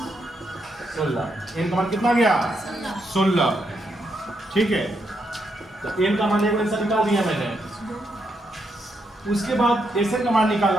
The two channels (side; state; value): both; normal; correlation 0.80